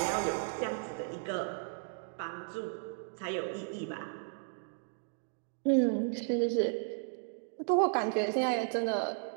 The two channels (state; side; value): silent; left; digital silence